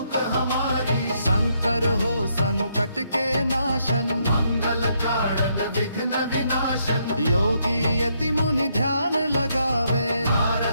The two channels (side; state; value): both; inverted; correlation -0.75